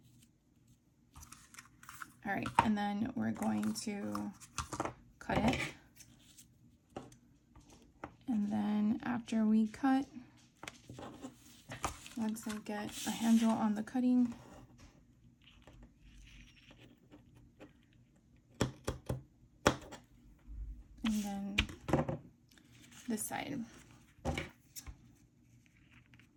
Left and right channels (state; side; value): identical; both; correlation 1.00